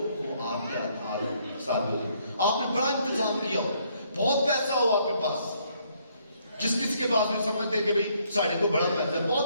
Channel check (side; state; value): both; inverted; correlation -0.69